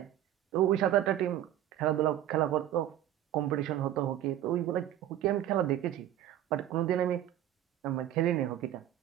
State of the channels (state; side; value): quieter; left; 12.3 dB